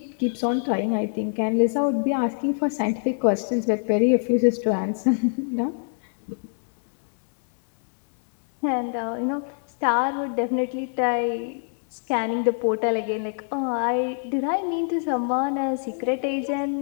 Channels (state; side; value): silent; right; digital silence